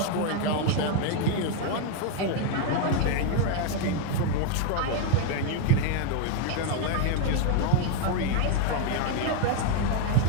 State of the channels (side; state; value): both; different; correlation 0.00